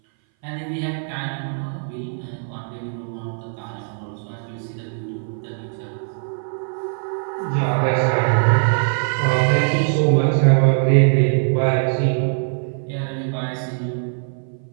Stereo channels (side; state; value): left; silent; 59 dB below the other